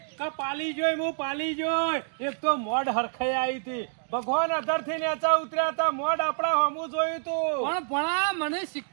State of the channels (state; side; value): silent; left; digital silence